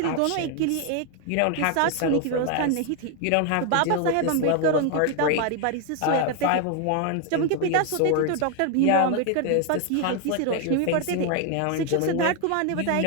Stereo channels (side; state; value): both; different; correlation 0.01